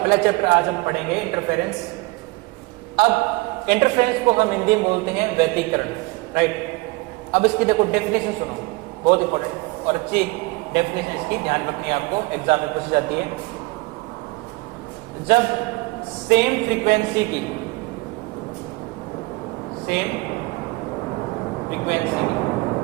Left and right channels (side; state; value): left; quieter; 23.5 dB